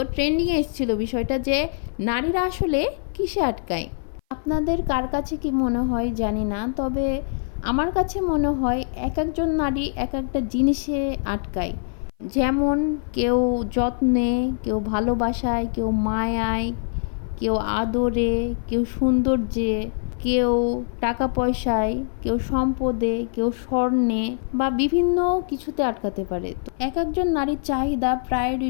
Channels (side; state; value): right; silent; 57 dB below the other